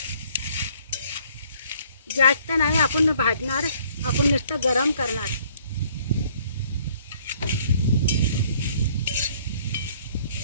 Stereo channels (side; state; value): both; inverted; correlation -0.60